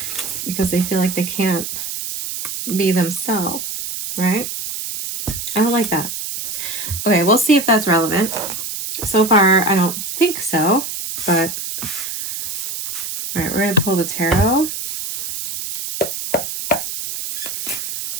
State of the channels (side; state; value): right; noise; hiss, 5 dB below the sound